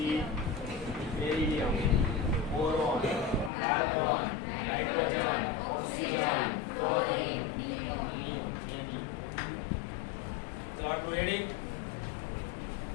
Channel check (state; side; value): drops out; right; at 3.5 s